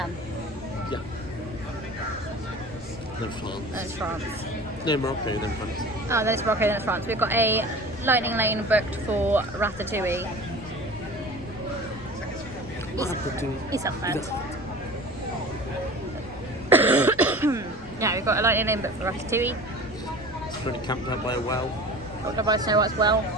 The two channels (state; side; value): noise; left; rumble, 17 dB below the sound